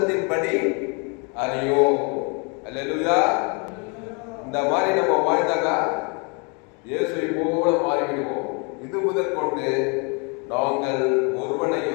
அறியோம். அல்லேலூயா. இந்த மாதிரி நம்ம வாழ்ந்தாக்கா இயேசுவை போல மாறிவிடுவோம். இது முதல் கொண்டு நாங்கள்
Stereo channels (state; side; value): quieter; right; 34.0 dB